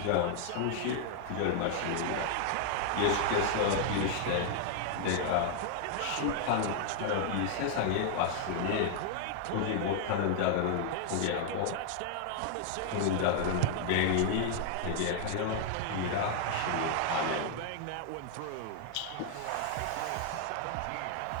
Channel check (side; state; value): both; different; correlation 0.00